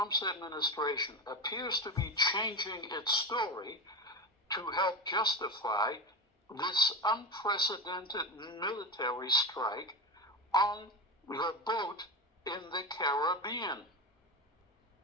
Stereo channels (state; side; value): normal; both; correlation 0.18